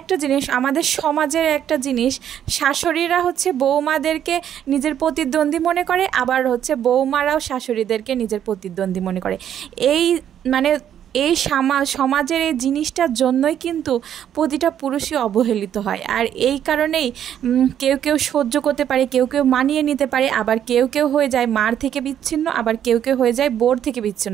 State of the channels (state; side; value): quieter; left; 9.9 dB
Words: জিনিস, আমাদের সমাজের একটা জিনিস, শাশুড়িরা হচ্ছে বৌমাদেরকে নিজের প্রতিদ্বন্দ্বী মনে করে, আবার হচ্ছে বৌমারাও শাশুড়িদেরকে নিজের প্রতিদ্বন্দ্বী মনে করে। এই মানে এই সমাজের এই জিনিসটার জন্যই কিন্তু প্রতিটা পুরুষই অবহেলিত হয়। আর এই কারণেই কেউ কেউ সহ্য করতে পারে, কেউ কেউ মানিয়ে নিতে পারে, আবার কেউ কেউ হয়ে যায় মার থেকে বিচ্ছিন্ন, আবার কেউ কেউ হয়ে যায় বোর থেকে